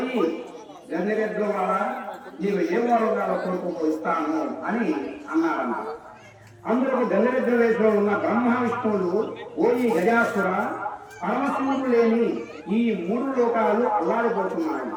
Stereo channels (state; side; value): identical; both; correlation 1.00